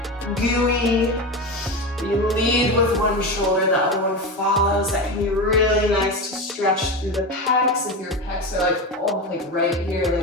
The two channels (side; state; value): both; normal; correlation 0.21